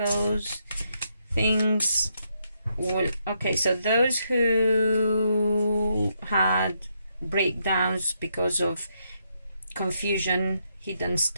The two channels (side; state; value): both; inverted; correlation -0.78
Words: Things will... Okay, so those who had breakdowns because of confusion, hidden